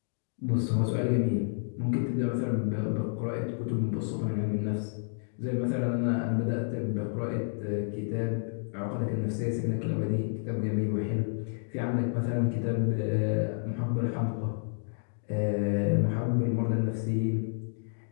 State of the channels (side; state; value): right; silent; digital silence